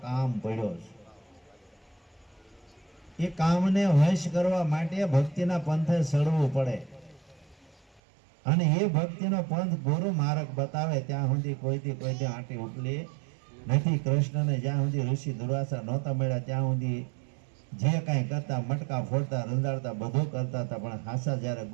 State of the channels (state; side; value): drops out; left; at 8.0 s